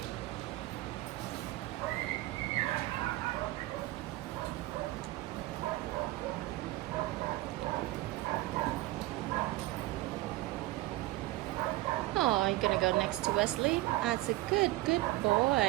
Oh, you're gonna go next to Wesley? That's a good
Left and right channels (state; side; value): quieter; left; 18.8 dB